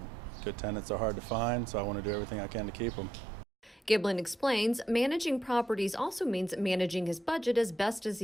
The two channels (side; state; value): both; normal; correlation 0.79